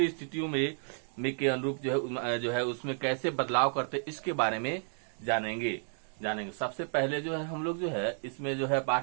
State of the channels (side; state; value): left; silent; 56 dB below the other